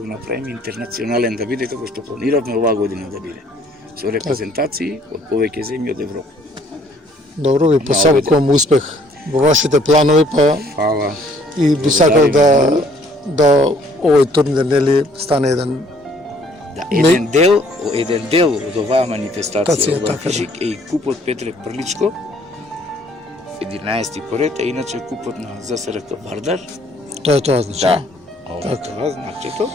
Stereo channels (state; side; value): normal; both; correlation 0.61